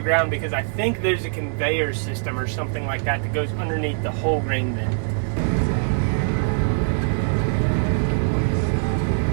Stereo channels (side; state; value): left; silent; 64 dB below the other